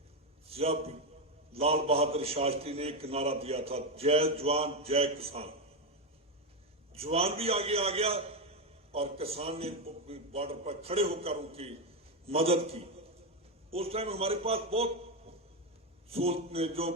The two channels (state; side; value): normal; both; correlation 0.09